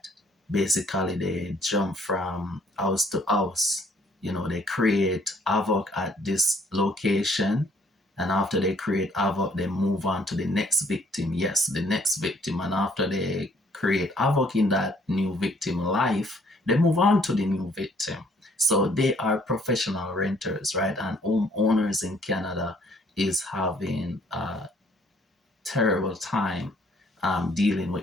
basically they jump from house to house. You know, they create havoc at this location, and after they create havoc, they move on to the next victim. Yes, the next victim, and after they create havoc in that new victim life, they move on to the new victim. So they are professional renters, right? And homeowners in Canada is having a terrible time dealing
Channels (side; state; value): both; normal; correlation 0.63